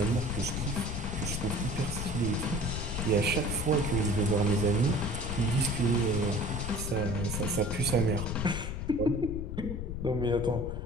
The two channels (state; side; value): noise; left; rumble, 4 dB below the sound